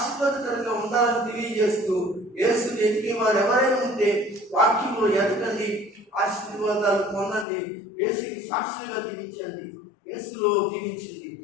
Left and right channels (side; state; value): right; drops out; at 7.5 s